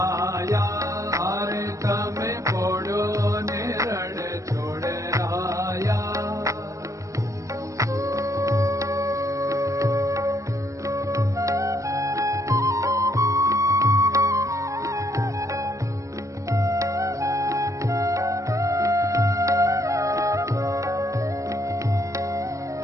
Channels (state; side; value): late; left; 0.15 ms